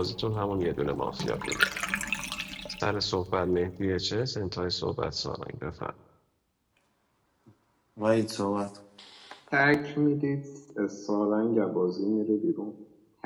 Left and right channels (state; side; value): identical; both; correlation 1.00